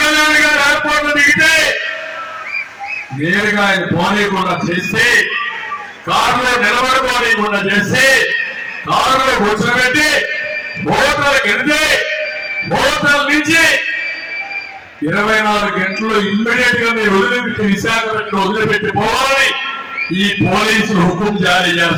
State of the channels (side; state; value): both; identical; correlation 1.00